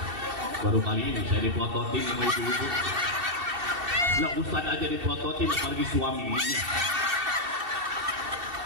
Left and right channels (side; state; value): left; late; 2.7 ms